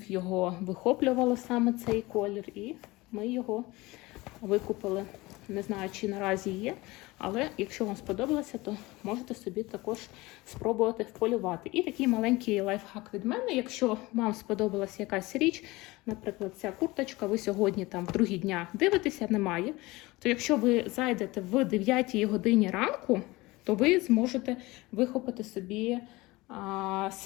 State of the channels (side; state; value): right; quieter; 21.4 dB